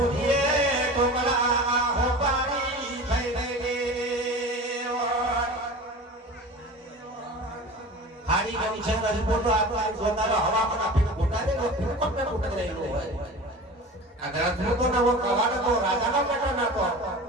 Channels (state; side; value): normal; both; correlation 0.35